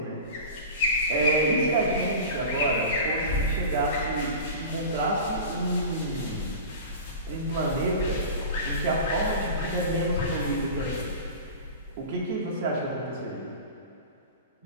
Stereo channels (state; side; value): inverted; both; correlation -0.33